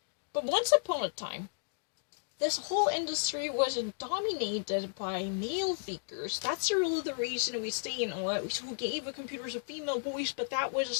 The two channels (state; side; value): silent; right; digital silence